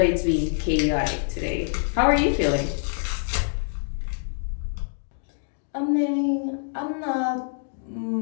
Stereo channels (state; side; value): silent; right; digital silence